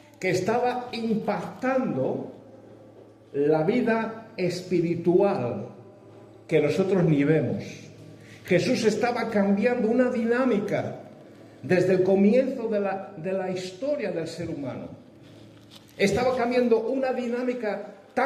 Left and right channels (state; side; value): identical; both; correlation 1.00